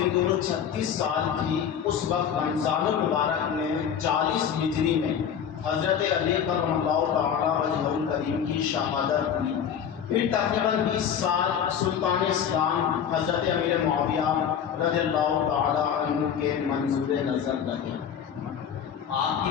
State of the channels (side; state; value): right; quieter; 8.2 dB